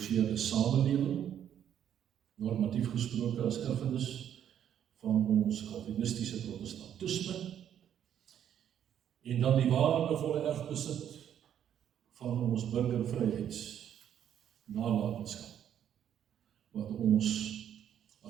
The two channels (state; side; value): quieter; left; 9.8 dB